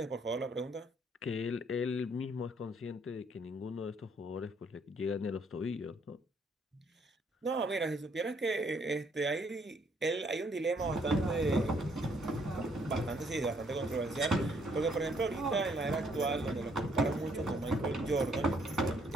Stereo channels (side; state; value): both; normal; correlation 0.67